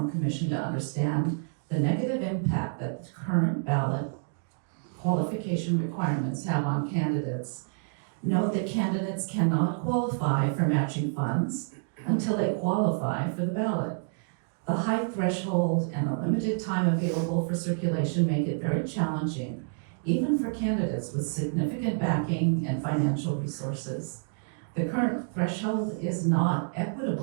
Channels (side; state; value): left; silent; digital silence